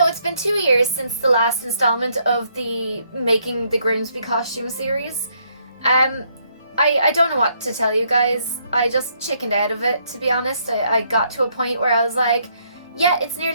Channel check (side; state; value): both; inverted; correlation -0.71